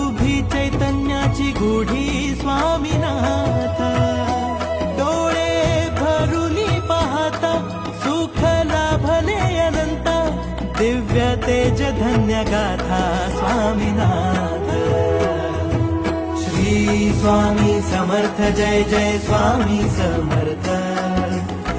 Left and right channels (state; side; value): identical; both; correlation 1.00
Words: चैतन्याची गुढी स्वामीनाथ डोळे भरुनी पाहता सुख लाभले अनंत दिव्य तेज धन्य गाथा स्वामीनाथ श्री स्वामी समर्थ जय जय स्वामी समर्थ